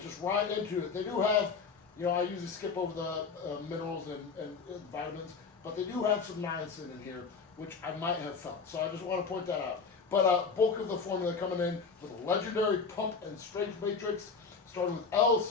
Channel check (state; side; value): quieter; right; 5.1 dB